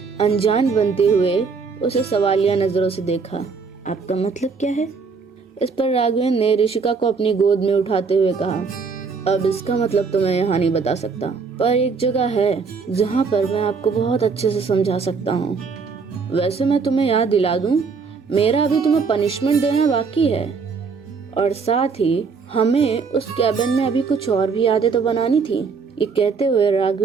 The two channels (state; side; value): quieter; left; 5.1 dB